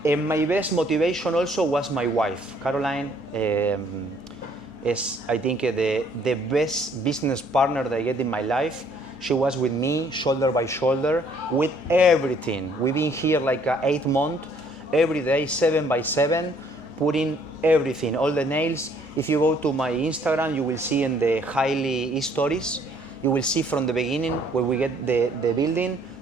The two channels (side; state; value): right; late; 2.3 ms